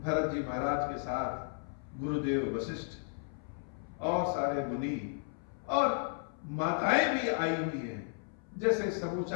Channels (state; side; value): silent; right; 55 dB below the other